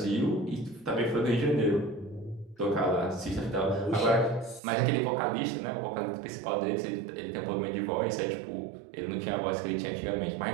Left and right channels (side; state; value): left; drops out; at 4.6 s